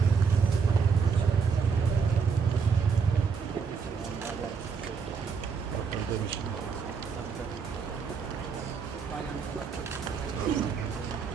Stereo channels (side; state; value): left; quieter; 5.7 dB